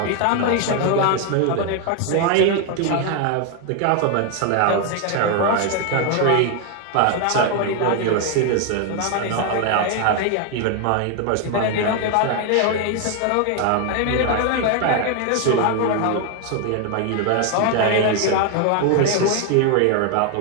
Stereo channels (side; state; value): both; different; correlation 0.01